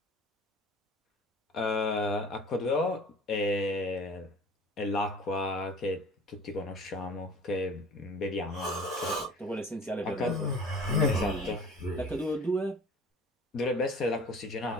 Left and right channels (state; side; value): normal; both; correlation 0.45